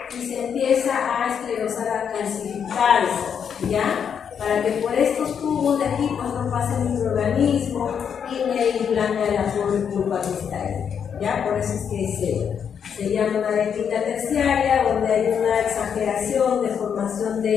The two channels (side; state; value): right; quieter; 7.5 dB